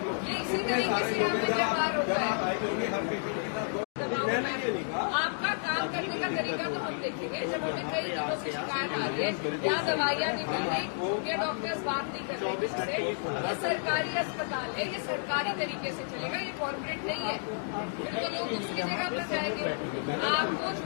ये इसी तरीके से यहाँ पे व्यवहार होता है। आपका काम करने का तरीका तो हम देखेंगे। जब हमें कई दिनों से शिकायत आ रही है, यहाँ दवाइयाँ नहीं मिल रही, ये डॉक्टर्स बात नहीं कर रहे किससे। ये सरकारी अस्पताल है, ये सरकारी तरीके से चलेगा, ये कॉर्पोरेट नहीं है। फिर तो लोग दूसरी जगह पर जाएंगे। आपको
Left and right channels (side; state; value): right; silent; digital silence